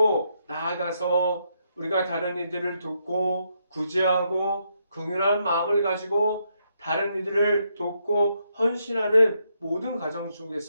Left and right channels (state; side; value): inverted; both; correlation -0.78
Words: 나아가서 우리가 다른 이들을 돕고 구제하고 긍휼한 마음을 가지고 다른 이들을 돕고 헌신하는 모든 과정